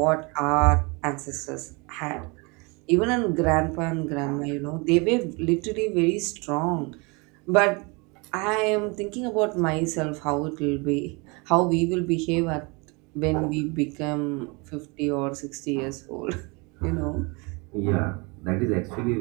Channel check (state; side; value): quieter; left; 29.2 dB